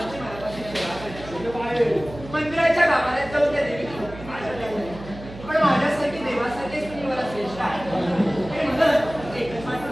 मनापासून सेवा करायची. मंदिराच्या गाभाऱ्यात जाऊन त्या देवी पण माझ्यासारखी देवासारखीच तुम्ही मला श्रेष्ठ आहे हे म्हणत एकच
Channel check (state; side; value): noise; right; hum, 14 dB below the sound